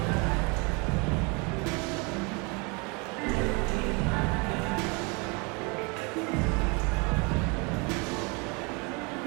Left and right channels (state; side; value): quieter; left; 30.6 dB